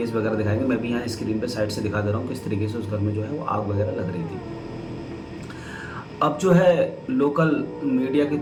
वगैरह दिखाएंगे। मैं भी यहाँ स्क्रीन पे साइड से दिखा दे रहा हूँ किस तरीके से उस घर में जो है वो आग वगैरह लग रही थी। अब जो है लोकल मीडिया के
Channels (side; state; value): both; identical; correlation 1.00